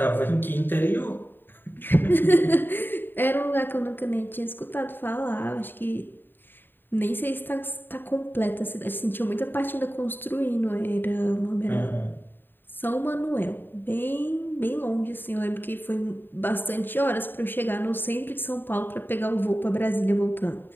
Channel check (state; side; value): late; right; 0.095 ms